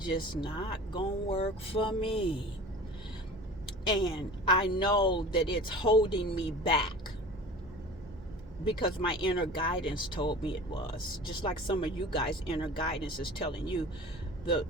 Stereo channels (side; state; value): both; normal; correlation 0.39